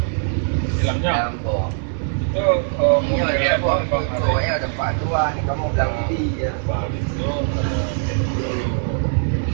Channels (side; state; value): left; silent; 56 dB below the other